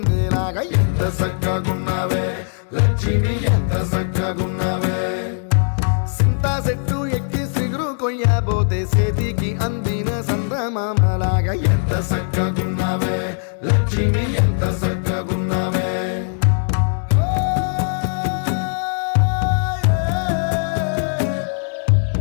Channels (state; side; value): silent; right; digital silence